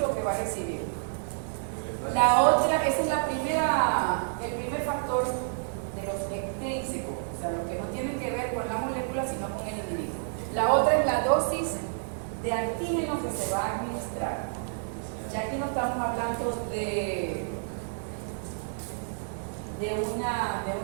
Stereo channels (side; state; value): left; silent; digital silence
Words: que va a recibir. La otra, ese es el primer factor de los extrínsecos, o sea, lo que no tiene que ver con la molécula, sino con el individuo. La otra es la dosis de antígeno que se va a administrar. Ya aquí no estamos hablando